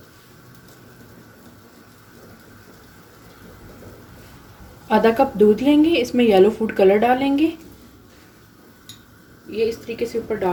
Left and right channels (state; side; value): identical; both; correlation 1.00